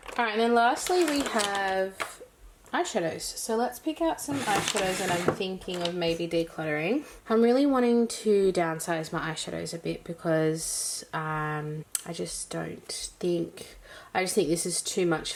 Alright, and then lastly we have eyeshadows. So let's pick out some eyeshadows that I'm thinking of maybe decluttering. I'm really wanting to downsize my eyeshadows a bit because I just think this is too much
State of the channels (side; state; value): both; identical; correlation 1.00